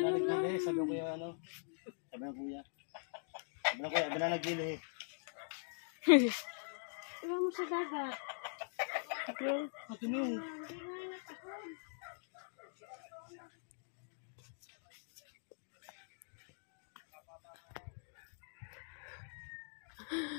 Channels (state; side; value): silent; right; digital silence